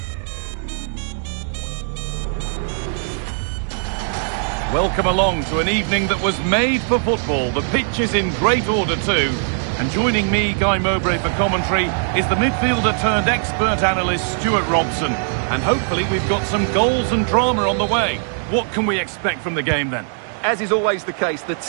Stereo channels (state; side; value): silent; left; digital silence